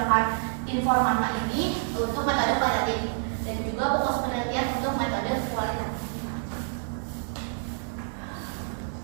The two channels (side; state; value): left; silent; digital silence